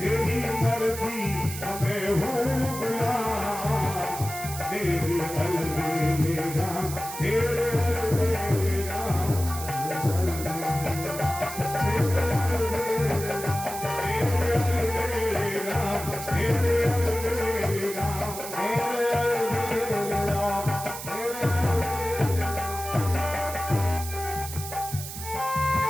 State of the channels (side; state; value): right; noise; hiss, 9 dB below the sound